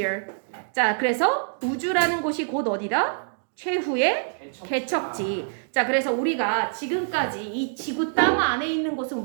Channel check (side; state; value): left; silent; digital silence